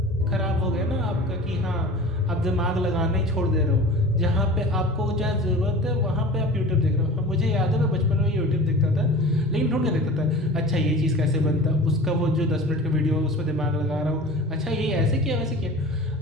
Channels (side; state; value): both; normal; correlation 0.38